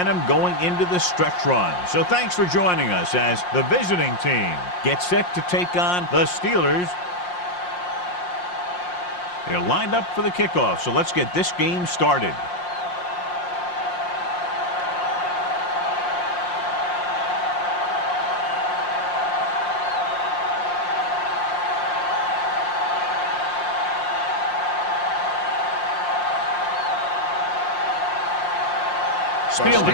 going into the stretch run. So thanks for joining us as the visiting team gets set to take on the Steelers. They're lined up for the kickoff, so let's get this game started.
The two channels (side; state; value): right; late; 5.6 ms